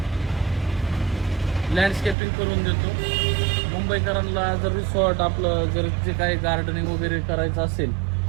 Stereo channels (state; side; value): drops out; left; at 2.1 s